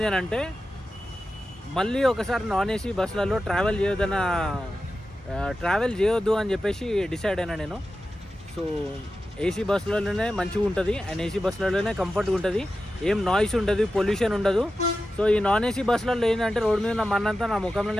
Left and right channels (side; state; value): both; normal; correlation 0.92